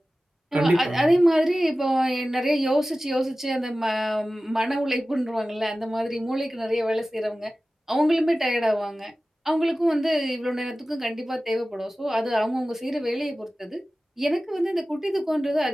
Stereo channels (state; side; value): normal; both; correlation 0.96